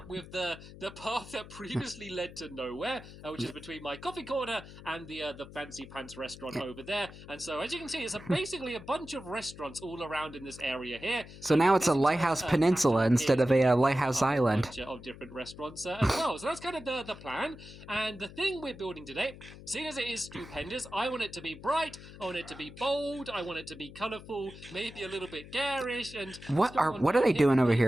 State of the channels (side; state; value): left; noise; hum, 16 dB below the sound